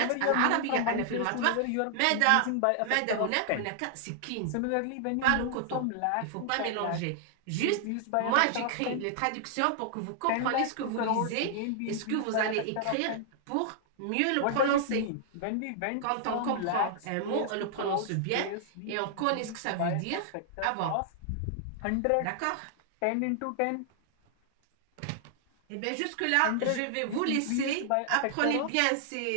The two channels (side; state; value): both; different; correlation -0.01